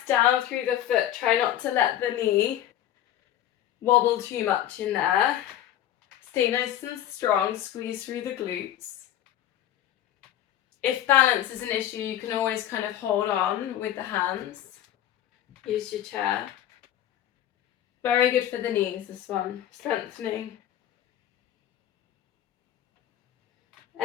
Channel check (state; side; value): quieter; right; 11.9 dB